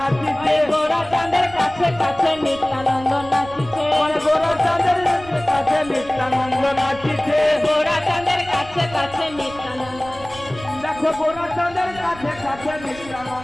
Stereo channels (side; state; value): right; noise; rumble, 18 dB below the sound